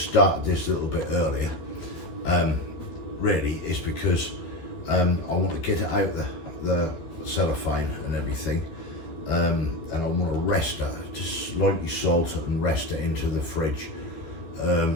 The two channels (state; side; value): late; right; 13 ms